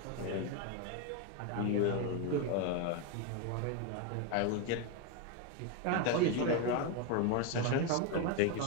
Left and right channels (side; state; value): both; different; correlation 0.02